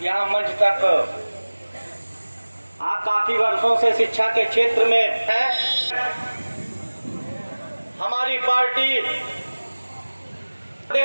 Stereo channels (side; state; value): both; inverted; correlation -1.00